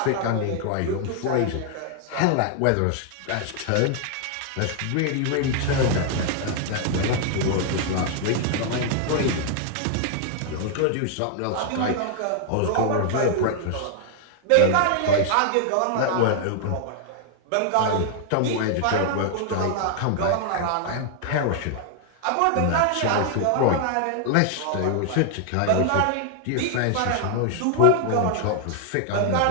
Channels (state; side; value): different; both; correlation 0.00